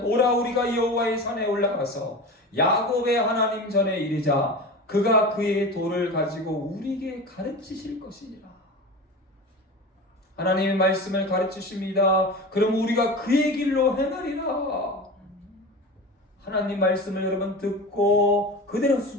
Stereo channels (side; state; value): both; normal; correlation 0.30